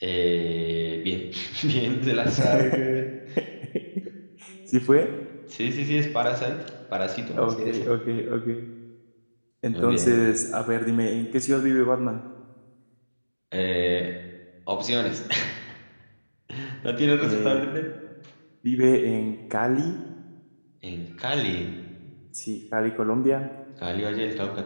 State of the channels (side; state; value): both; inverted; correlation -1.00